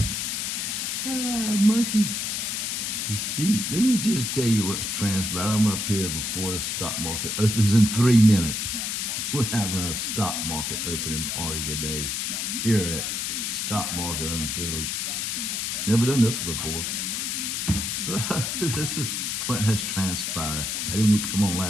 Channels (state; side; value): noise; left; hiss, 1 dB below the sound